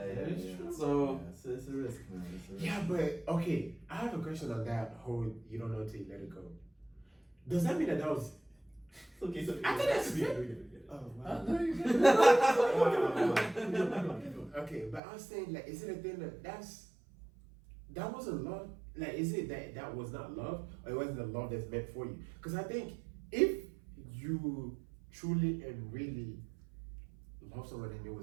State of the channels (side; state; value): left; drops out; at 15.0 s